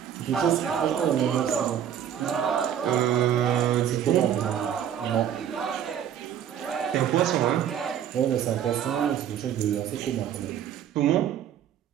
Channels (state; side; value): quieter; left; 9.6 dB